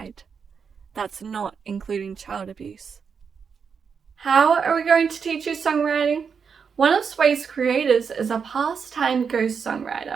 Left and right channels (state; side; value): quieter; left; 6.2 dB